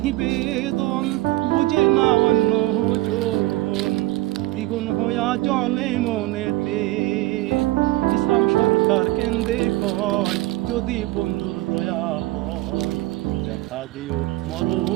বেদন বুঝে না অন্যজন, দ্বিগুণ হইয়া জলে মনেতে। ইসলাম সরকার কেন্দ্রে কয় যদি বন্ধুর দয়া হয়, দেখা দিও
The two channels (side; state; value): left; quieter; 18.3 dB